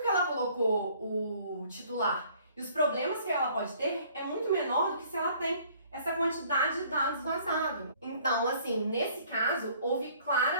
que ela colocou o titular E os problemas que ela pode ter é muito menor do que se ela tem essa quantidade de dados vazados. Então, assim, nesse caso, houve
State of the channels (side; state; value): both; inverted; correlation -0.58